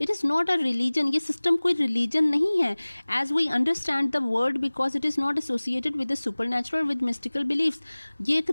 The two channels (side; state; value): both; inverted; correlation -1.00